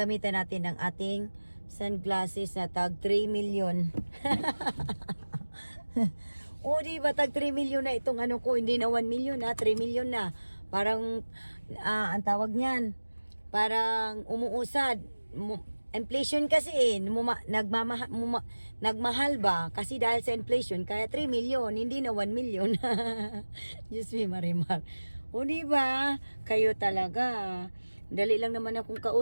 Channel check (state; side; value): inverted; both; correlation -1.00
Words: natin ng ating sunglasses na tag 3 million. O, diba? Tag 3 million na itong ko. Hindi na 1 million na. 3 million na. Parang, ang tawag niyan. Parang umuusad. Inflation kasi nagmahal ba? Kasi dahil sa inflation, kaya 3 million. Hindi na 1 million. Diyos me, Marimar. O diba, kayo talaga. Dali lang naman akong